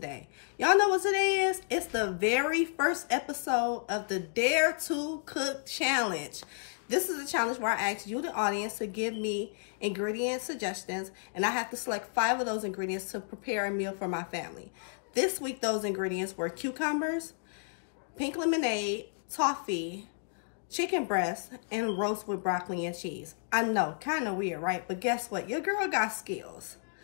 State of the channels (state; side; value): silent; right; digital silence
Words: Y'all know what today is? It's the very first episode of the Dare to Cook Challenge. This is a challenge where I ask you, the audience, to give me ingredient suggestions, and I have to select 5 of those ingredients to prepare a meal for my family. This week, those ingredients were cucumbers, pink lemonade, toffee, chicken breast, and roast with broccoli and cheese. I know, kind of weird, right? But guess what? Your girl got skills.